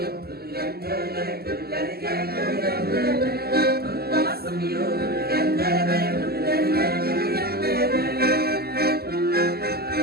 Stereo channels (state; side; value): late; left; 0.46 ms